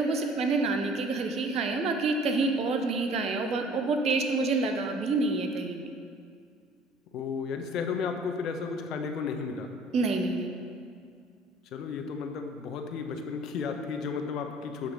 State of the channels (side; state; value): both; normal; correlation 0.51